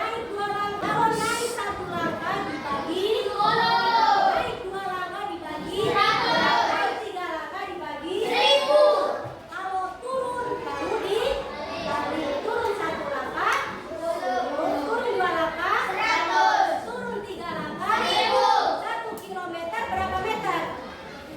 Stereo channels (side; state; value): both; identical; correlation 1.00